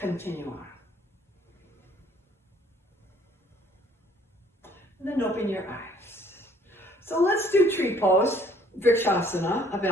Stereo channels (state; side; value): normal; both; correlation 0.60